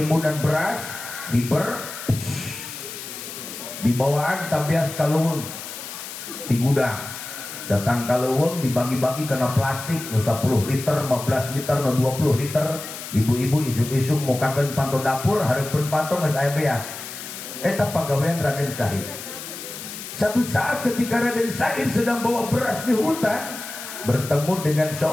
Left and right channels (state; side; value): noise; left; hiss, 10 dB below the sound